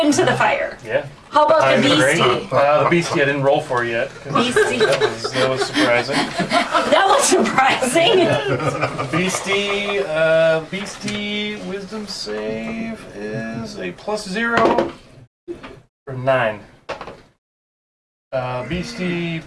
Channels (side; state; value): both; identical; correlation 1.00